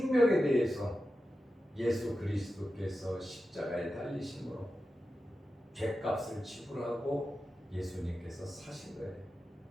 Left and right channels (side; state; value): both; normal; correlation 0.92